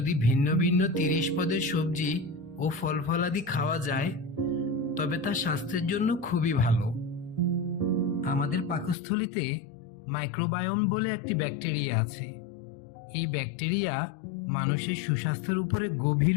ভিন্ন ভিন্ন 30 পদের সবজি ও ফল ফলাদি খাওয়া যায় তবে তা স্বাস্থ্যের জন্য খুবই ভালো। আমাদের পাকস্থলীতে মাইক্রোবায়োম বলে একটি ব্যাকটেরিয়া আছে। এই ব্যাকটেরিয়া মানুষের সুস্বাস্থ্যের উপরে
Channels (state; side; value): drops out; right; at 9.0 s